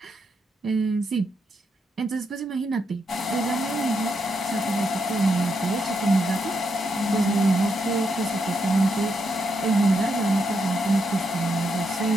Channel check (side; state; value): both; normal; correlation 0.81